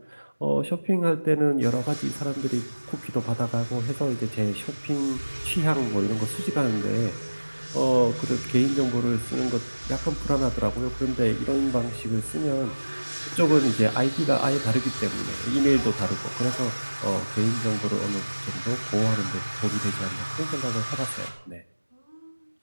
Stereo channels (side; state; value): both; inverted; correlation -1.00